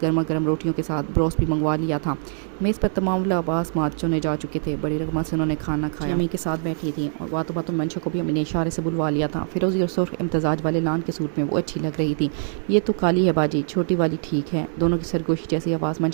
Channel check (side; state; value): left; silent; 62 dB below the other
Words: गर्मा गर्म रोटियों के साथ ब्रोस्ट भी मंगवा लिया था। मेज़ पर तमाम लबास मात चुने जा चुके थे। बड़ी रकमा से उन्होंने खाना खाया। अम्मी के साथ बैठी थी और बातों बातों मंशा को भी अम्मी ने इशारे से बुलवा लिया था। फिरोजी और सुर्ख इम्तजाज वाले लान के सूट में वो अच्छी लग रही थी। ये तो काली है बाजी, छोटी वाली ठीक है। दोनों की सरगोशी जैसी आवाज़